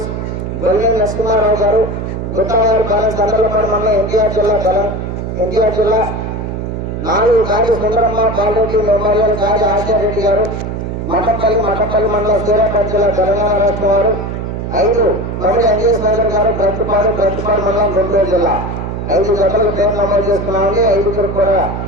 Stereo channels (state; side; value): noise; right; hum, 5 dB below the sound